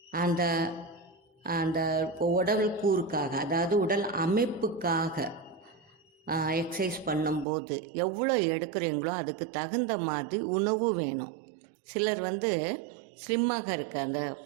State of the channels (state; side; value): drops out; left; at 7.5 s